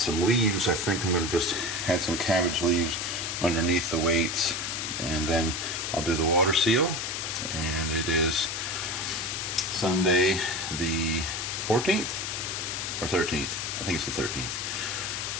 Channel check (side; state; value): left; noise; hiss, 3 dB below the sound